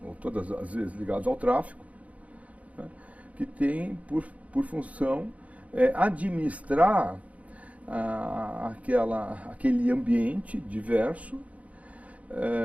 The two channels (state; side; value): late; left; 0.068 ms